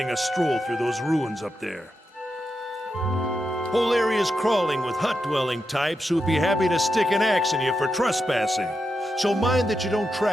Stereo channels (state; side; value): normal; both; correlation 0.87